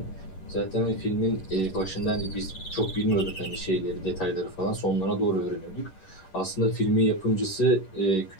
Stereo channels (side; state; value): right; late; 11 ms